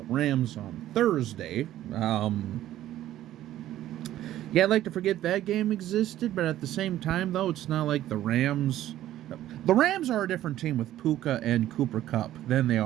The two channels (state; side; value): quieter; left; 13.3 dB